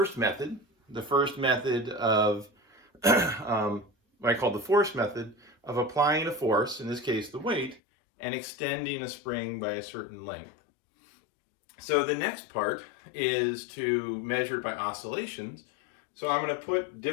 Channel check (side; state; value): right; drops out; at 7.8 s